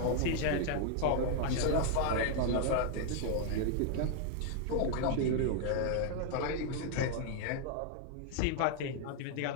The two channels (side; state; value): both; different; correlation 0.00